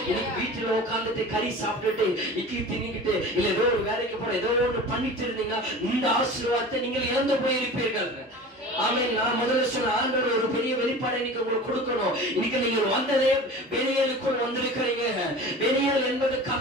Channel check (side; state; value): both; normal; correlation 0.37